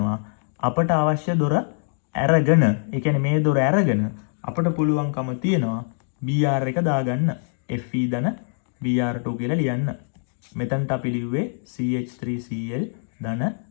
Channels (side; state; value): right; silent; digital silence